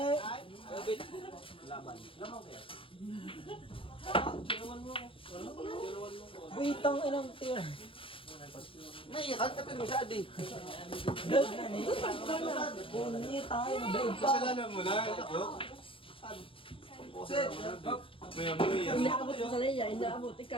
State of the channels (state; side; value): late; right; 0.26 ms